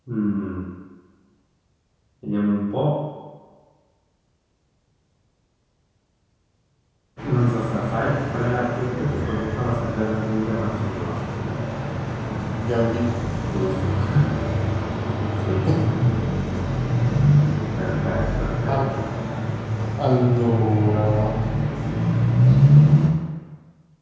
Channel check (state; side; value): identical; both; correlation 1.00